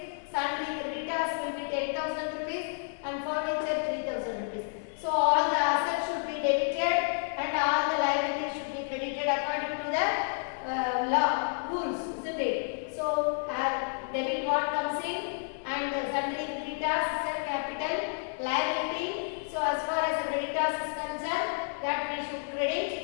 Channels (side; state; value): right; silent; 58 dB below the other